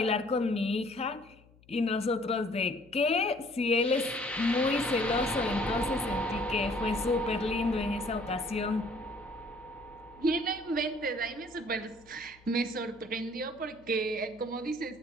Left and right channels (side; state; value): left; noise; hum, 27 dB below the sound